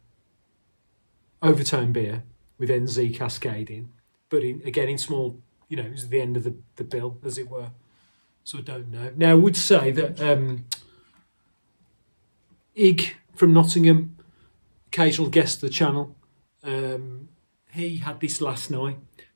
Overtone beer with NZ Cascade in, but again in small, it was the end of the bill, as it were. So I don't know. Now I would say that Ig from Nottingham, occasional guest of the channel, he had this last night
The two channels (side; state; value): both; inverted; correlation -1.00